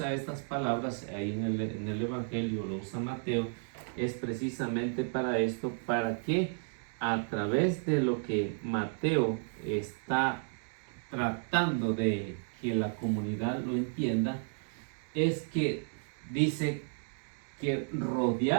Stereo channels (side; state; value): left; silent; 56 dB below the other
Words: estas palabras ahí en el Evangelio, lo usa Mateo, es precisamente para esto, para que a través de lo que Mateo está tratando de que la comunidad lo entienda, es que dice que